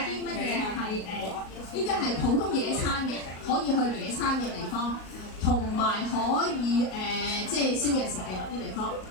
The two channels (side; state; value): right; late; 38 ms